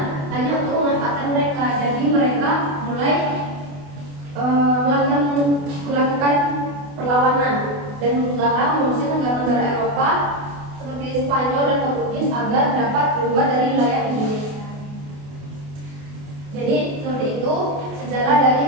hanya untuk memanfaatkan mereka. Jadi mereka mulai melakukan perlawanan dan berusaha mengusir negara-negara Eropa seperti Spanyol dan Portugis agar dapat keluar dari wilayah Indonesia. Jadi seperti itu sejarah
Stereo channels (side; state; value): left; late; 28 ms